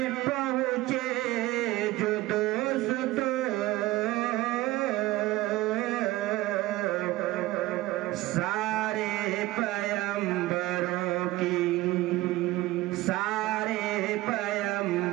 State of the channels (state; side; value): quieter; left; 17.9 dB